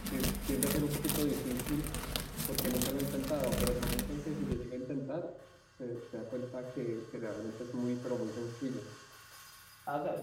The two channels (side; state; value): both; identical; correlation 1.00